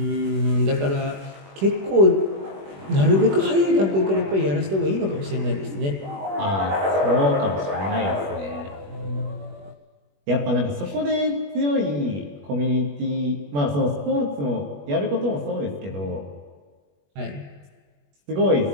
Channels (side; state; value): left; late; 21 ms